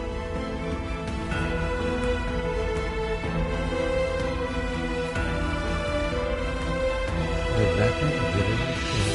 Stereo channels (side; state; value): both; identical; correlation 1.00